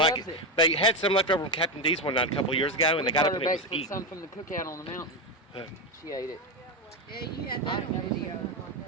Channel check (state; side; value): normal; both; correlation 0.12